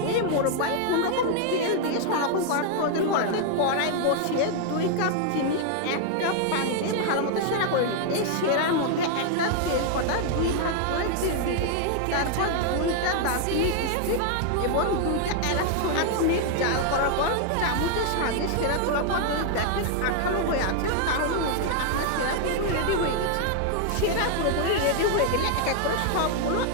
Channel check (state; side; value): different; both; correlation 0.00